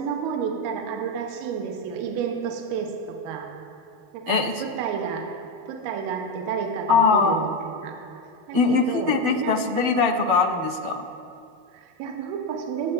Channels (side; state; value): left; late; 12 ms